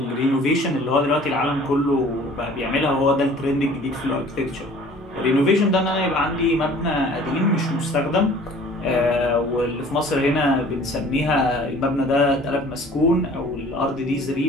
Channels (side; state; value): both; normal; correlation 0.50